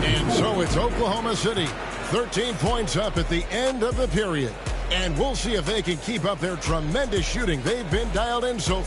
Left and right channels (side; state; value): both; identical; correlation 1.00